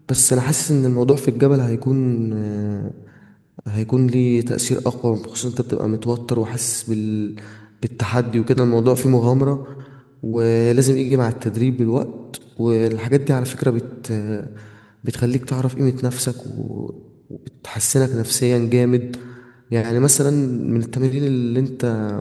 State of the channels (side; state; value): both; identical; correlation 1.00